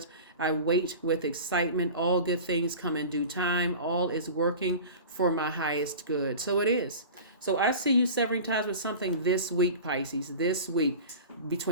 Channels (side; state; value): both; inverted; correlation -0.35